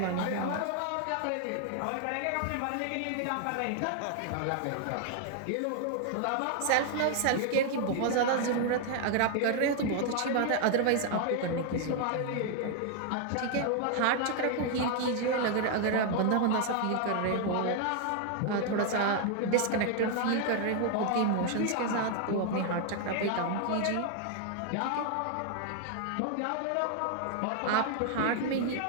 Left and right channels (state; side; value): different; both; correlation 0.00